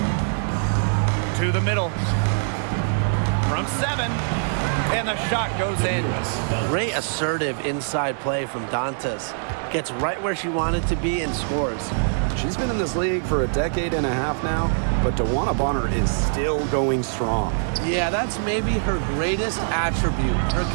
To the middle. From 7. And the shot goes in. Great assertive inside play from Dantas. Gets right where she wanted to be and scores. She's been in this league for a decade and a half now, but DeWanna Bonner is still going strong. Yeah, that's maybe her greatest attribute, her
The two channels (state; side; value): silent; left; digital silence